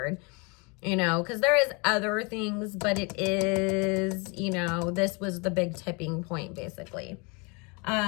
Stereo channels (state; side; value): quieter; right; 30.6 dB